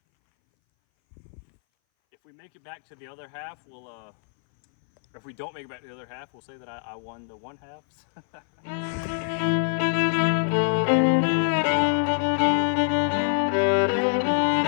if we make it back to the other half, we'll if we don't make it back to the other half, we'll say that I won the one halves.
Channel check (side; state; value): right; silent; 60 dB below the other